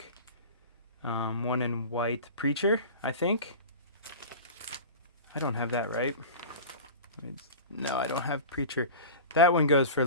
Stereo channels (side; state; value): both; inverted; correlation -0.32